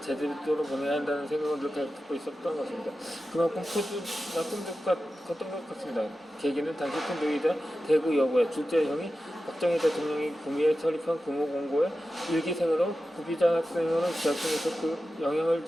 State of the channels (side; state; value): both; normal; correlation 0.93